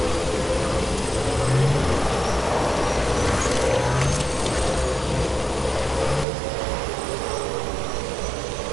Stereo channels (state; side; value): drops out; left; at 6.2 s